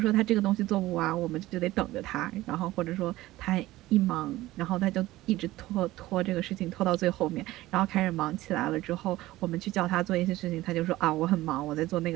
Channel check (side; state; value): left; quieter; 17.0 dB